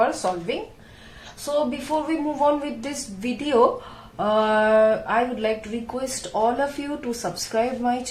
solving. So before we move on with this video, I would like to request all of you to subscribe my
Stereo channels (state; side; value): identical; both; correlation 1.00